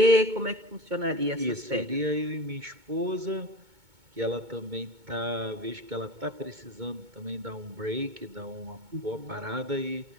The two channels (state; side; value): late; left; 2.2 ms